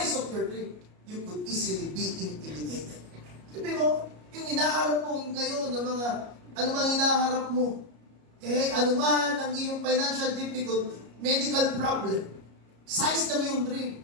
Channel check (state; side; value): late; left; 33 ms